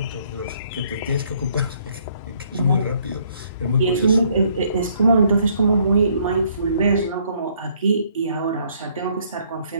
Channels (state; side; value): inverted; both; correlation -0.65